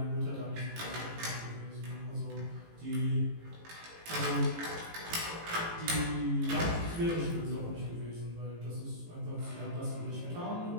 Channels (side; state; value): left; late; 18 ms